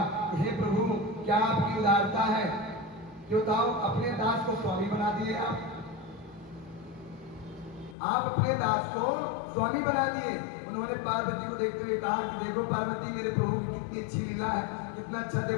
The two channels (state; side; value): drops out; right; at 8.0 s